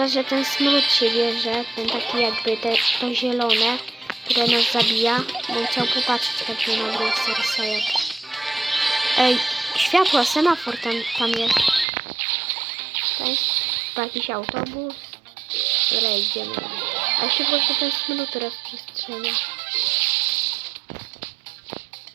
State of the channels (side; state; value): left; drops out; at 11.9 s